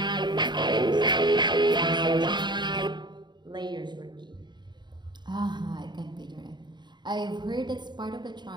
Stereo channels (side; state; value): left; late; 0.21 ms